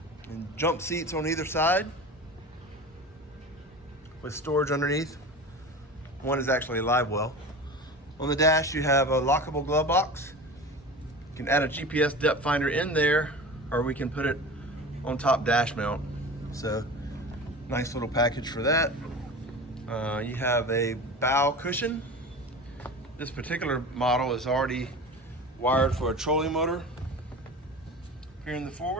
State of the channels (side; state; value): both; normal; correlation 0.33